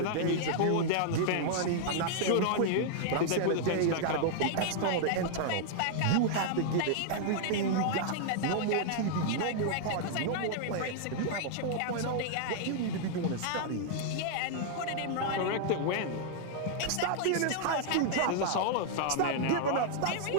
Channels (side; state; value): both; different; correlation -0.01